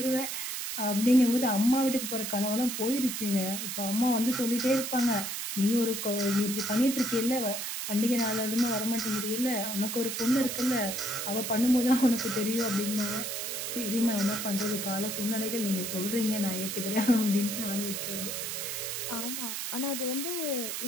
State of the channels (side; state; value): right; noise; hiss, 4 dB below the sound